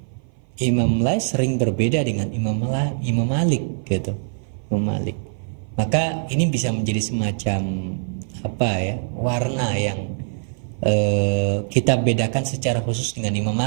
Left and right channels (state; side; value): silent; left; 56 dB below the other